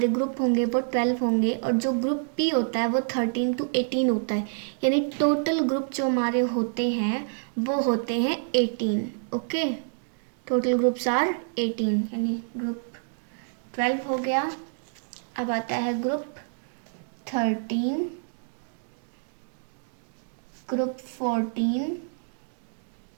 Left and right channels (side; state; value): left; silent; digital silence